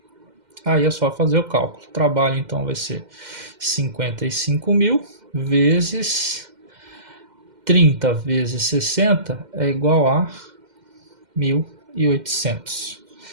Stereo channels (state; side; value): late; left; 2.1 ms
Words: Aí é só fazer o cálculo. O trabalho então vai ser 55.000 vezes 30 vezes 60 é igual a 1.800.